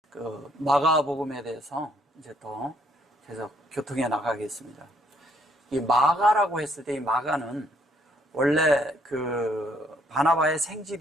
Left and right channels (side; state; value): both; normal; correlation 0.67